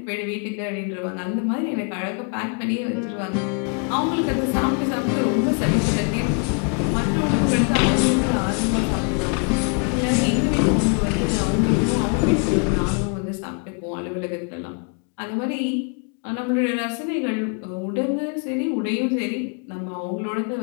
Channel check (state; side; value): quieter; right; 38.3 dB